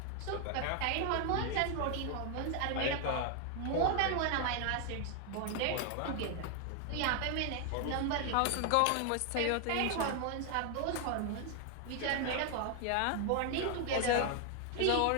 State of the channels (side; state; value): both; different; correlation 0.01